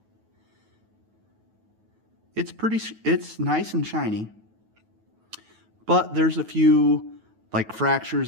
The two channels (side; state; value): left; late; 9.3 ms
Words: It's nice and shiny, but there's a few like